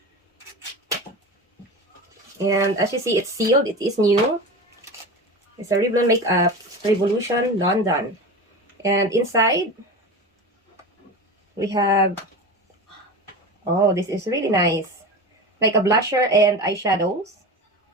And as you see, it's sealed. It is new. It's a Revlon Makeup Revolution London. And inside, we have, oh, this is really nice. Like a blusher and eyeshadows.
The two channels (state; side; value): normal; both; correlation 0.28